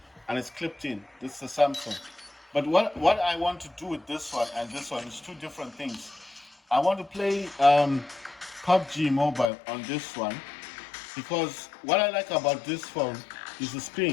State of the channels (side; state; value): right; drops out; at 9.5 s